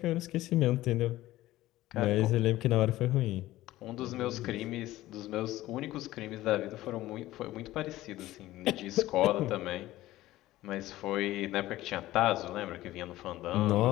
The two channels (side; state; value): right; quieter; 16.1 dB